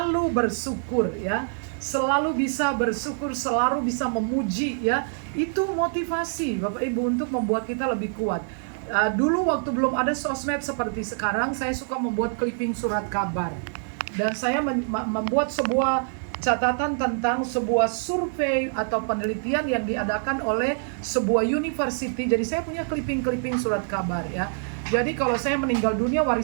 bersyukur ya, selalu bisa bersyukur, selalu bisa memuji ya. Itu motivasi Bapak Ibu untuk membuat kita lebih kuat. Dulu waktu belum ada sosmed seperti sekarang, saya suka membuat clipping surat kabar, dan saya membuat sebuah catatan tentang sebuah survei atau penelitian yang diadakan oleh sebuah university. Jadi saya punya clipping surat kabar ya. Jadi kalau saya meninggal dunia,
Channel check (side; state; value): left; silent; digital silence